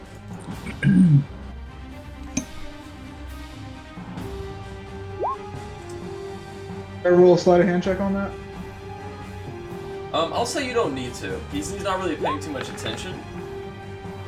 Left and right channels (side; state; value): both; identical; correlation 1.00